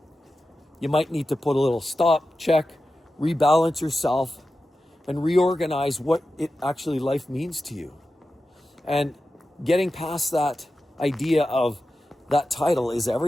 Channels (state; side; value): normal; both; correlation 0.92